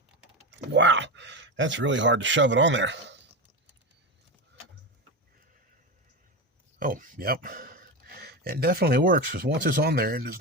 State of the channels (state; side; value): normal; both; correlation 0.18